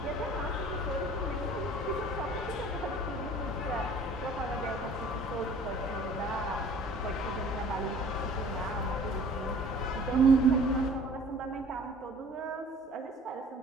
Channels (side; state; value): both; normal; correlation 0.49